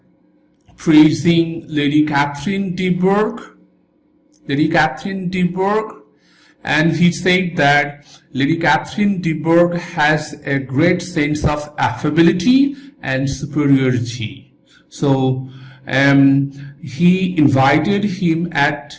praising Lady Catherine de Bourgh. And he said that Lady Catherine de Bourgh has a great sense of affability and superiority. So he invited him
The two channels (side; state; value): both; identical; correlation 1.00